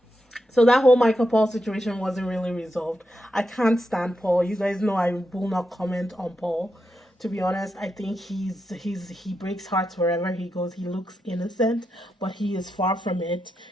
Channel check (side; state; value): both; normal; correlation 0.85